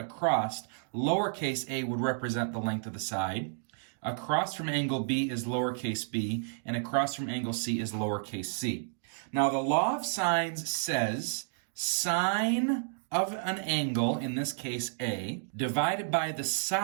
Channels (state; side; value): silent; left; digital silence